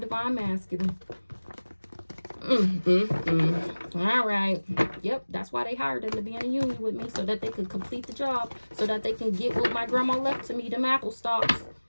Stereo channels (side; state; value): both; inverted; correlation -1.00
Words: divine masculine. All right. Yep, that's why they hired him to be in a union with me, so that they could complete the job, so that they can get what my grandma left to me, them apple stalks.